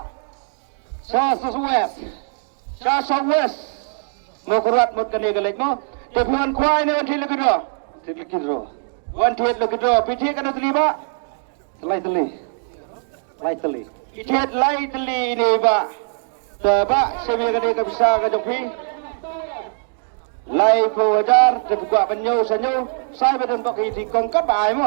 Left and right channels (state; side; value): silent; left; digital silence